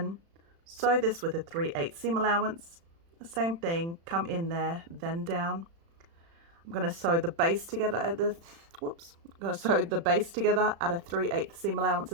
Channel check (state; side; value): late; left; 36 ms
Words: sew this with a 3/8 seam allowance. The same thing, come in there, then down. I'm going to sew the base together at the, I'm going to sew the base together at a 3/8 seam allowance